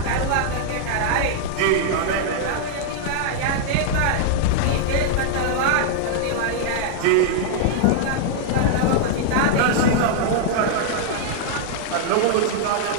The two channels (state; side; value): different; both; correlation -0.01